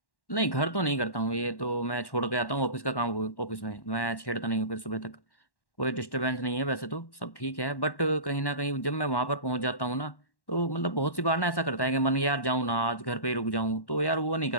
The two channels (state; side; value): late; right; 1.1 ms